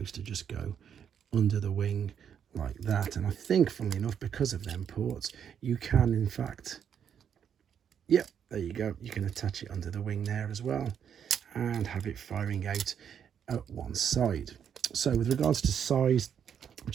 to just go under the wing like that. And I think, funnily enough, because of them ports, you can in fact, yep, there you go, you can attach it under the wing there as well and have it firing out at one side. So with regards to size, I've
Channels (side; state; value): left; quieter; 8.2 dB